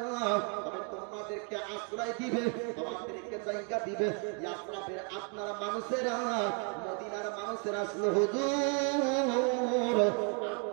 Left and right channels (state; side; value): quieter; left; 39.2 dB